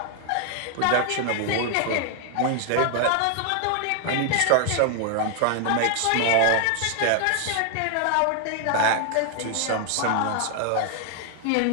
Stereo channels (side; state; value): both; different; correlation 0.00